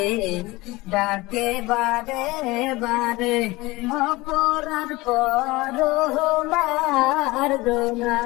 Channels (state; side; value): quieter; right; 21.1 dB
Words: ডাকে বারে বারে, অপরাধ করো মার্জনা।